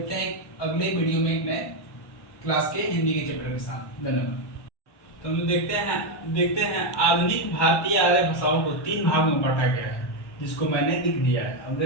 हैं अगले वीडियो में एक नए क्लास के हिंदी के चैप्टर के साथ। धन्यवाद। तो हम देखते हैं आधुनिक भारतीय आर्य भाषाओं को 3 भागों में बांटा गया है, जिसको मैंने लिख दिया है। अब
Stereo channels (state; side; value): late; right; 1.1 ms